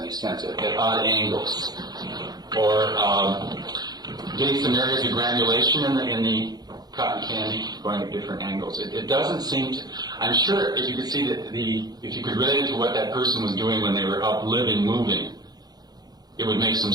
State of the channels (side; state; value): left; late; 0.19 ms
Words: sense, at odd angles, or getting some areas of granulation in the cotton candy going at different angles. It doesn't seem to. I'm sure if you could see if you could relate it to what that person was doing when they were up, living, moving, it would make some